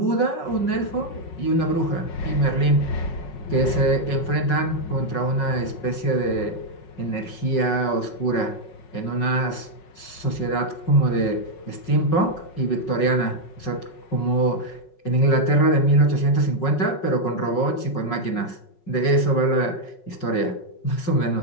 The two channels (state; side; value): late; right; 5.4 ms